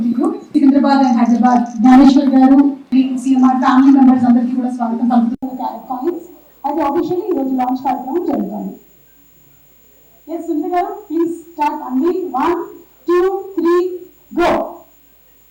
to you. Secunderabad and Hyderabad Gnaneshwar garu CMR family members అందరికీ కూడా స్వాగతం పలుకుతూ క్యారెట్ కాయిన్స్ అయితే ఆఫీషియల్లీ ఈ రోజు లాంచ్ కార్యక్రమం జరుగుతుంది. ఎస్ సునీత గారు ప్లీజ్ స్టార్ట్ అండి. 1 2 3 గో.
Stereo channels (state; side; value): identical; both; correlation 1.00